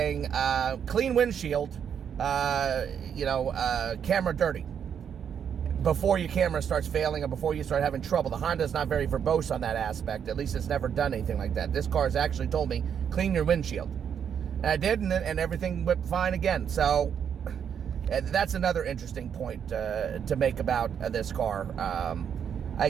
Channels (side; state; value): left; quieter; 8.0 dB